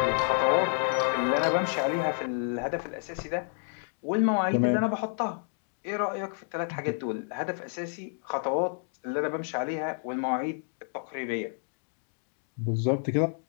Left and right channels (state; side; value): silent; right; 58 dB below the other